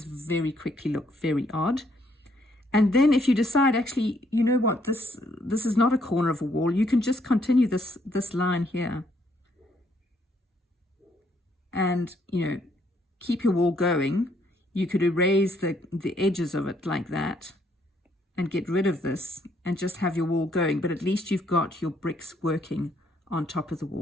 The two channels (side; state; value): both; normal; correlation 0.70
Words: very quickly look very odd. And then if you decide, actually, you know what, this is not a corner of a wall, you can just continue this line here. And, you know, keep your wall going. You could erase the edges of it like that and get rid of this and just have your wall going. But at least you've got your bricks working on top of the